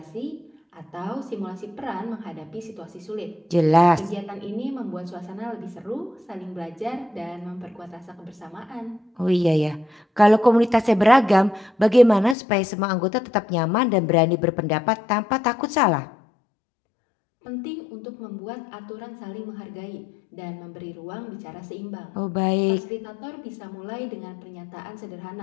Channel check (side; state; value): right; drops out; at 12.4 s